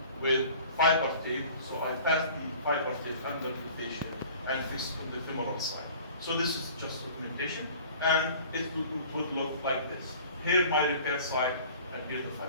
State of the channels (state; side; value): inverted; both; correlation -0.46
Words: with fiber tape. So I pass the fiber tape under the fascia and fix on the femoral side. So this is just augmentation, and it would look like this. Here my repair side, and here the